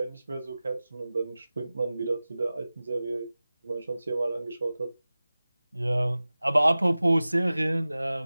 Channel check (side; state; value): both; inverted; correlation -0.97